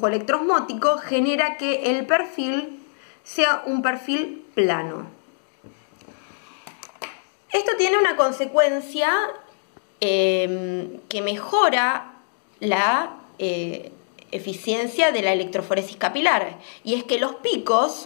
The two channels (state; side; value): silent; right; digital silence